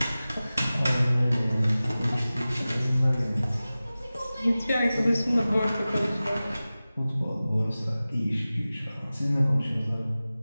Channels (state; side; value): inverted; both; correlation -0.97